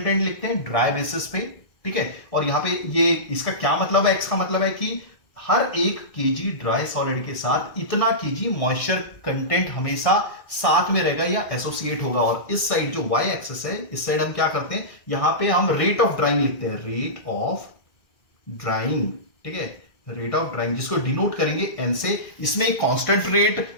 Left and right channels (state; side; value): late; right; 1.7 ms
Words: लिखते हैं ड्राई बेसिस पे। ठीक है, और यहां पे ये इसका क्या मतलब है? एक्स का मतलब है कि हर एक केजी ड्राई सॉलिड के साथ इतना केजी मॉइस्चर कंटेंट हमेशा साथ में रहेगा या एसोसिएट होगा। और इस साइड जो वाई एक्सिस है, इस साइड हम क्या करते हैं? यहां पे हम रेट ऑफ ड्राइंग लिखते हैं, रेट ऑफ ड्राइंग। ठीक है, रेट ऑफ ड्राइंग जिसको डिनोट करेंगे एन से। इसमें एक कांस्टेंट